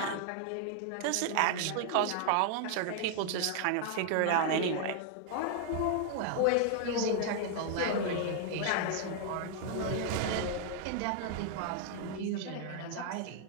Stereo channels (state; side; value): different; both; correlation 0.00